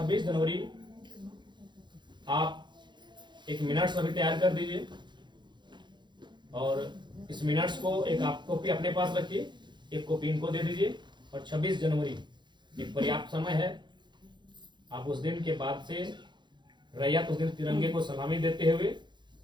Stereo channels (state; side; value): late; left; 0.22 ms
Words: जनवरी आप एक मिनट्स अभी तैयार कर दीजिए, और इस मिनट्स को एक आप कॉपी अपने पास रखिए, एक कॉपी इनको दे दीजिए। और 26 जनवरी एक पर्याप्त समय है, आप उस दिन के बाद से रैयत उस दिन तिरंगे को सलामी देते हुए